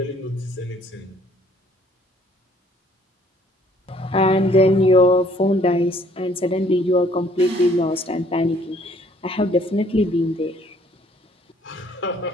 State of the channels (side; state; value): both; normal; correlation 0.61